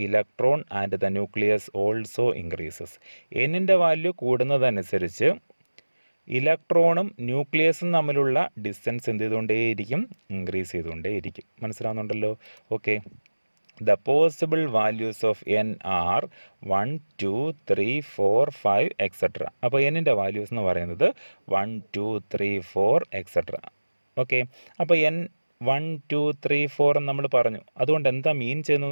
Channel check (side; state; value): both; inverted; correlation -1.00